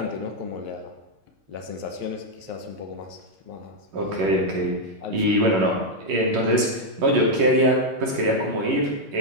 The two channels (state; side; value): late; left; 11 ms